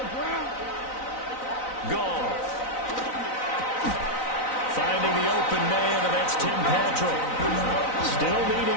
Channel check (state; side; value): late; right; 3.9 ms